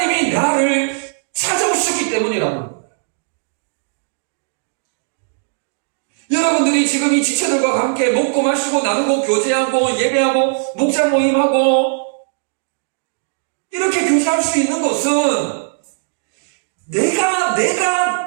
나를 찾아오셨기 때문이라는 거예요. 여러분들이 지금 이 지체들과 함께 먹고 마시고 나누고 교제하고 예배하고 목자 모임하고 이렇게 교제할 수 있는 것은 내가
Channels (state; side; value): silent; left; digital silence